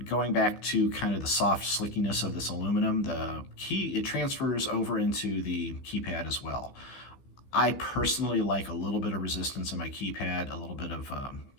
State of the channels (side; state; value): right; late; 15 ms